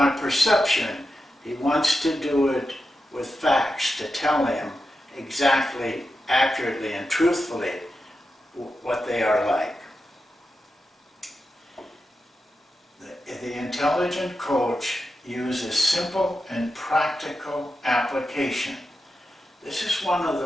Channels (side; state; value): both; normal; correlation 0.89